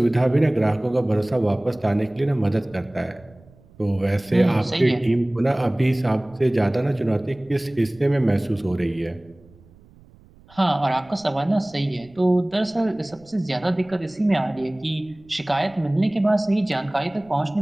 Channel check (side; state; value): right; noise; rumble, 27 dB below the sound